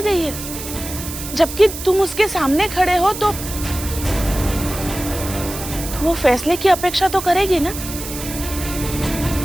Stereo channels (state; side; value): noise; right; hiss, 9 dB below the sound